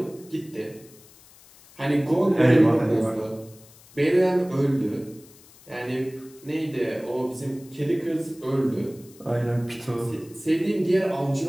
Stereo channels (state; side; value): noise; left; hiss, 24 dB below the sound